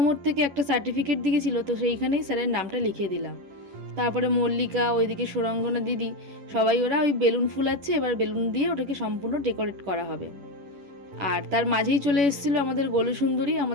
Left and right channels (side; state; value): left; late; 11 ms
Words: থেকে একটা সার্টিফিকেট দিয়েছিল, তো সেইখানেই স্যারের নামটা লিখে দিলাম। তারপরে মল্লিকা, ওইদিকে সুরঙ্গনা দিদি, সবাই ওরা ওই বেলুন ফুলাচ্ছে, এবার বেলুন দিয়ে ওটাকে সম্পূর্ণ ডেকোরেট করা হবে। আর তার মাঝেই চলে এসেছিলো আমাদের গোলু সুন্দরী,